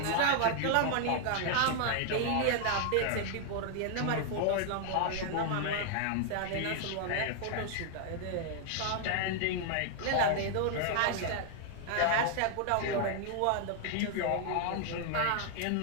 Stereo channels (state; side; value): different; both; correlation 0.00